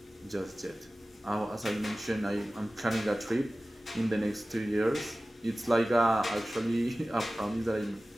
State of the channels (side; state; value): both; normal; correlation 0.96